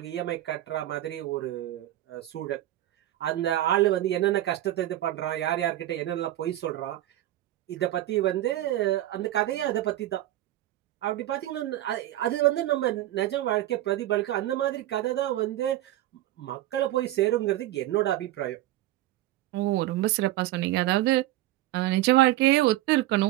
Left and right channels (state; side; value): quieter; left; 14.7 dB